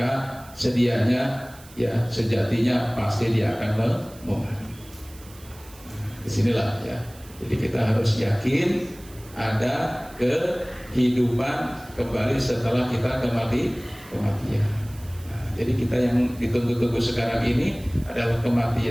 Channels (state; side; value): noise; right; hiss, 22 dB below the sound